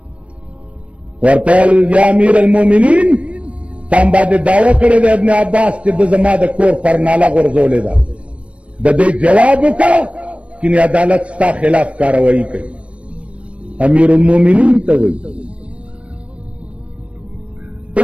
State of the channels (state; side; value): late; left; 0.062 ms